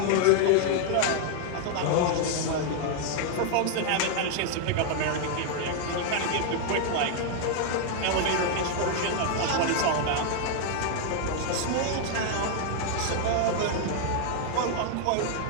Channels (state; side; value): different; both; correlation 0.00